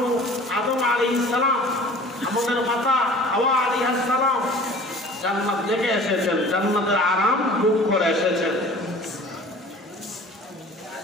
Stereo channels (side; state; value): both; normal; correlation 0.45